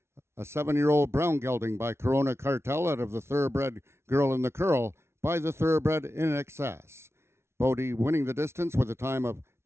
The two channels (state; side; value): late; left; 0.13 ms